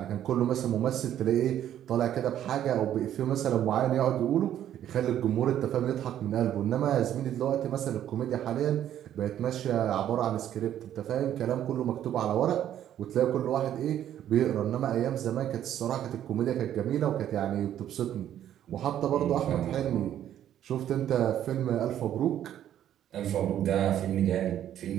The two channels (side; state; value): left; quieter; 11.0 dB